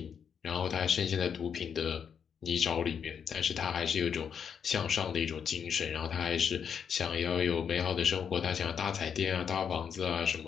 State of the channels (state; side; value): quieter; right; 7.4 dB